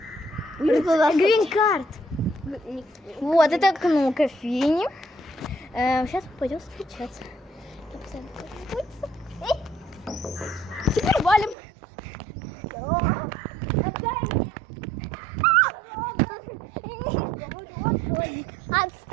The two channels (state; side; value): drops out; left; at 11.6 s